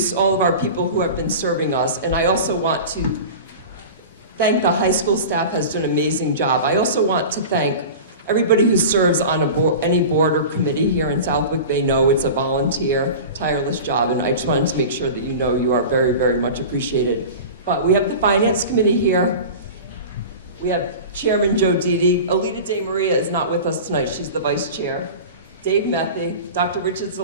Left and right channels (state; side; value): inverted; both; correlation -0.33